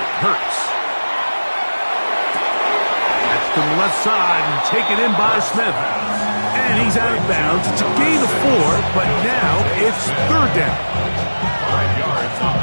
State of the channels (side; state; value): both; inverted; correlation -1.00